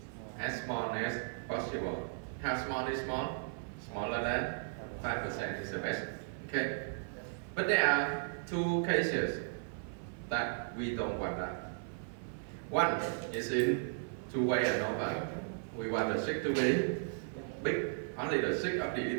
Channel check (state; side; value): silent; left; 54 dB below the other